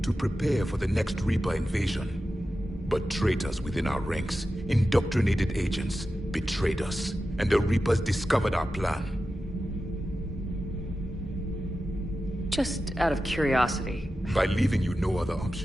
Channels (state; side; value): normal; both; correlation 0.92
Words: to prepare for the next Reaper invasion. But traitors within our ranks, indoctrinated agents, betrayed us, and the Reapers discovered our plan. Just out of curiosity. By leaving you no other